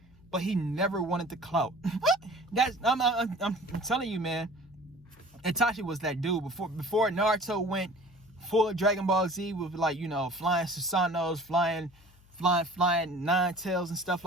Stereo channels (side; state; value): left; noise; hum, 27 dB below the sound